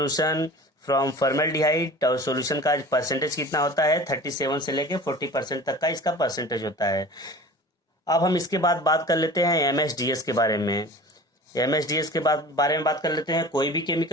from formaldehyde, और सॉल्यूशन का परसेंटेज कितना होता है, 37 से लेके 40% तक का इसका परसेंटेज होता है। अब हम इसके बाद बात कर लेते हैं MSDS के बारे में। MSDS के बारे में बात कर लेते हैं। कोई भी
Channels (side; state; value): both; normal; correlation 0.39